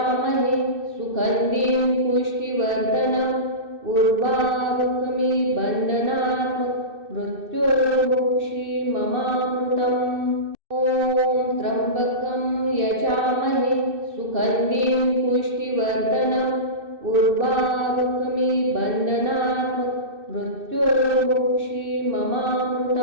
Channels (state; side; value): late; left; 2.6 ms